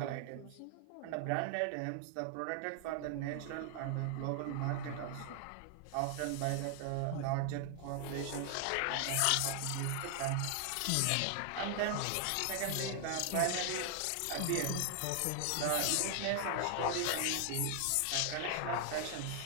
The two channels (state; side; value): different; both; correlation 0.00